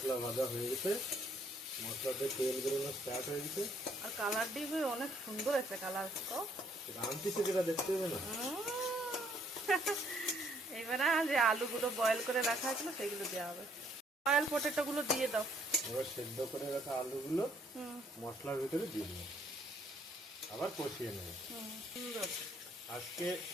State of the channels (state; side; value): normal; both; correlation 0.66